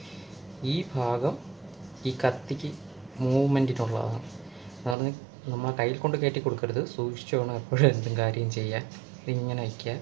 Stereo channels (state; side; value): drops out; left; at 5.0 s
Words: ഈ ഭാഗം ഈ കത്തിക്ക് മൂവ്മെൻറ്റിനുള്ളതാണ്. എന്ന് പറഞ്ഞാൽ നമ്മൾ കയ്യിൽ കൊണ്ട് കയറ്റി കൊടുക്കരുത്, സൂക്ഷിച്ചു വേണം എപ്പോഴും എന്തും കാര്യം ചെയ്യാൻ. ഇതിങ്ങനെ വയ്ക്കുക.